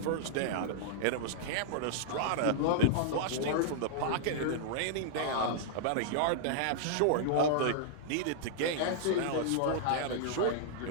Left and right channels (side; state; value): both; different; correlation -0.01